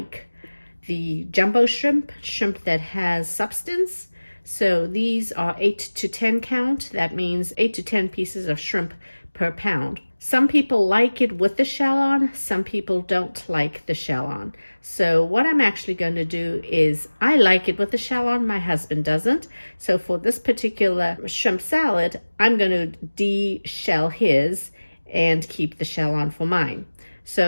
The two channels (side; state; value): both; inverted; correlation -1.00